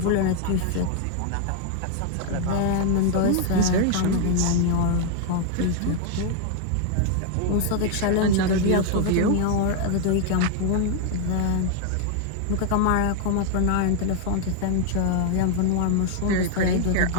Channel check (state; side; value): different; both; correlation 0.00